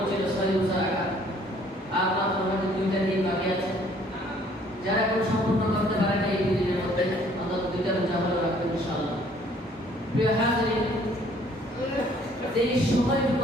ছিল সহিহ রোজা রাখা। আর মাত্র আমাদের 2টা দিন বাকি আছে। যারা এখন সম্পূর্ণ করতে পারে না এই 2 দিনের মধ্যে অন্তত 2টা রোজা হলো রাখবেন ইনশাআল্লাহ। প্রিয় হাজিরিন, এই সময়টুকু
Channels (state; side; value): normal; both; correlation 0.59